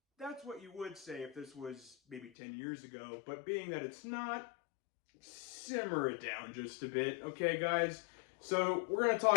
That's what you would say if this was maybe 10 years ago, but being that it's not, simmer it down just a bit, okay, guys? So we're going to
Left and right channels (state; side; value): drops out; right; at 2.3 s